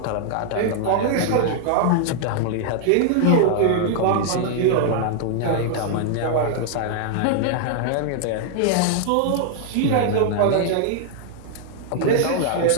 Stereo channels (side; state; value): both; different; correlation 0.00